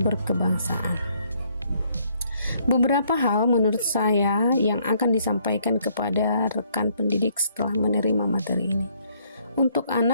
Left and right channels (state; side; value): inverted; both; correlation -0.68